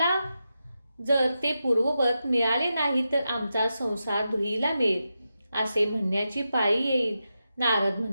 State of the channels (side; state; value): both; inverted; correlation -0.89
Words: जर ते पूर्ववत मिळाले नाही तर आमचा संसार धुईला मिळेल असे म्हणण्याची पाळी येईल. नारद